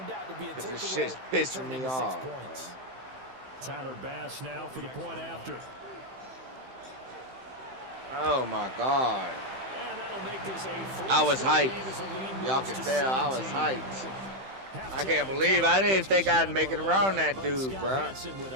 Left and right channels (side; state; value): left; late; 15 ms